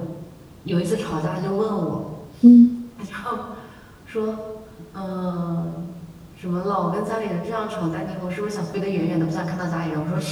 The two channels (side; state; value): both; identical; correlation 1.00